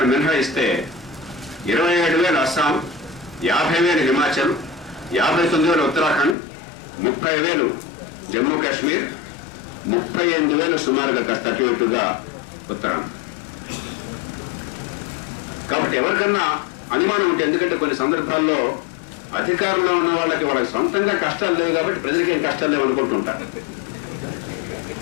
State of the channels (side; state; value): right; drops out; at 6.4 s